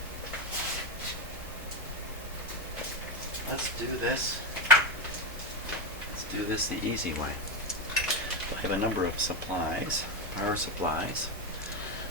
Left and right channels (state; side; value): normal; both; correlation 0.13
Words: Let's do this. Let's do this the easy way. I have a number of supplies, power supplies,